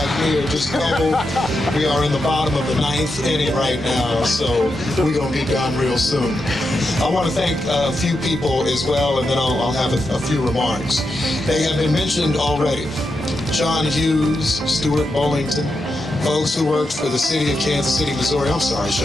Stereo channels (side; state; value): both; normal; correlation 0.86